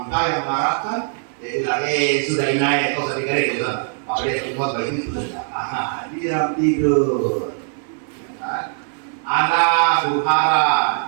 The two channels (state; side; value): silent; left; digital silence